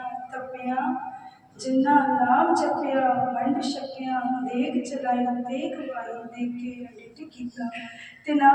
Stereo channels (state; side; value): identical; both; correlation 1.00